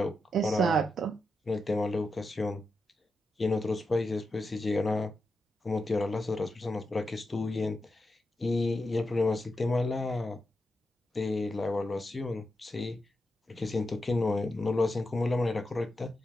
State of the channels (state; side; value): normal; both; correlation 0.87